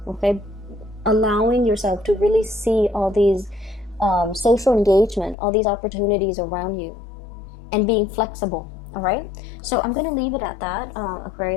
Okay, allowing yourself to really see all these social engagement, all these opportunities around you, and being flexible. All right, so I'm gonna leave it at that.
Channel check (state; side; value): drops out; right; at 5.4 s